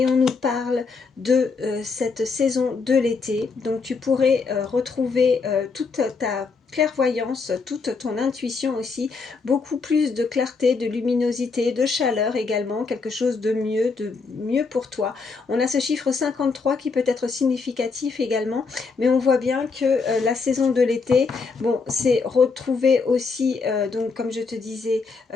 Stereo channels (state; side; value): quieter; right; 4.6 dB